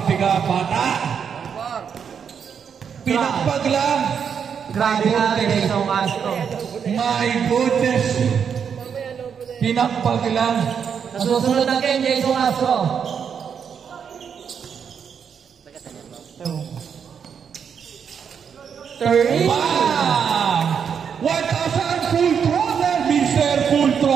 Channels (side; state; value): left; quieter; 7.2 dB